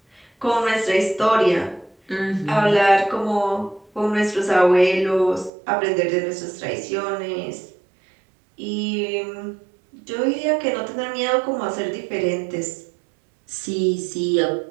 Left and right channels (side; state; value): left; drops out; at 5.5 s